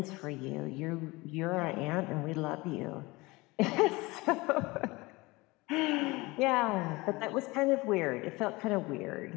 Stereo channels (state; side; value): quieter; right; 22.8 dB